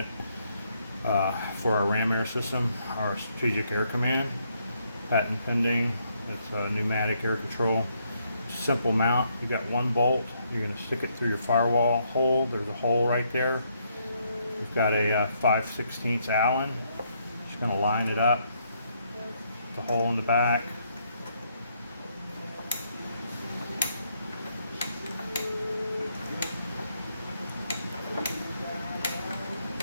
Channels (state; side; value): inverted; both; correlation -0.73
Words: for our Ram Air system, our strategic air command, patent pending. It's a pneumatic air control. Simple mount. You got one bolt. You're going to stick it through your firewall hole. There's a hole right there. We've got a 5/16 Allen. Just going to line it up. The hole in the back.